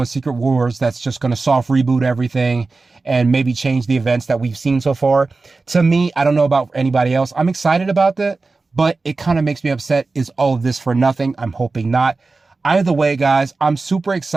Secret Wars that's just going to soft reboot everything and maybe change the events that we've seen so far. To me, I don't know about anybody else, I'm excited about that, but it kind of makes me upset. Is all of this for nothing? I'm hoping not. Either way, guys, I'm super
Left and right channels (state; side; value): quieter; left; 3.8 dB